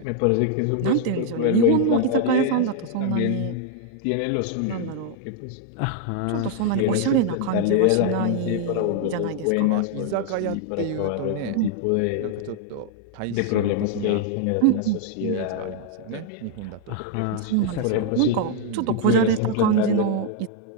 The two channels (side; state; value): both; different; correlation 0.00